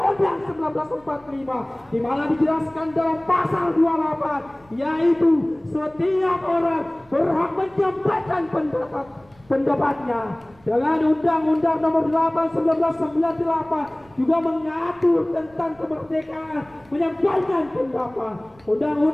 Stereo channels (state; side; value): noise; right; rumble, 29 dB below the sound